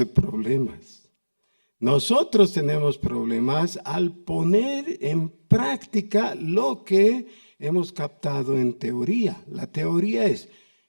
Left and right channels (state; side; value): inverted; both; correlation -1.00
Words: problemas. Nosotros tenemos problemas al poner en práctica lo que hemos captado en teoría. La teoría es,